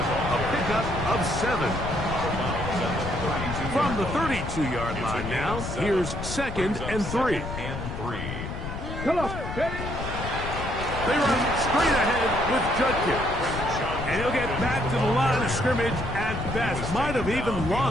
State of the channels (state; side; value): noise; left; rumble, 6 dB below the sound